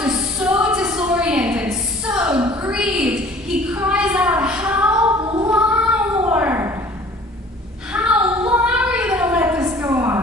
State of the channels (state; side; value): normal; both; correlation 0.50